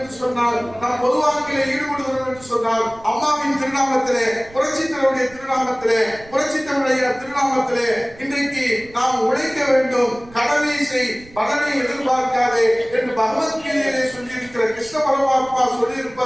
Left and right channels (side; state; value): right; noise; rumble, 22 dB below the sound